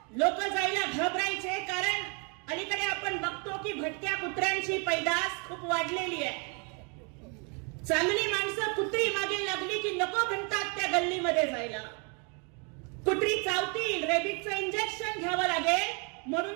लोक जायला घाबरायचे कारण अलीकडे आपण बघतो की भटक्या कुत्र्यांची पैदास खूप वाढलेली आहे. चांगली माणसं कुत्री मागे लागली की नको म्हणतात त्या गल्लीमध्ये जायला. कुत्री चावतील, रेबीजचं इंजेक्शन घ्यावं लागेल म्हणून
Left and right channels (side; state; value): left; quieter; 35.3 dB